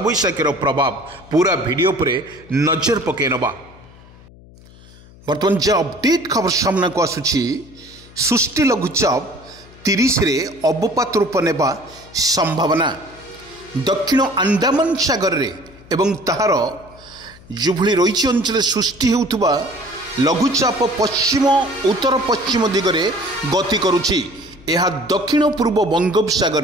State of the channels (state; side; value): noise; left; hum, 23 dB below the sound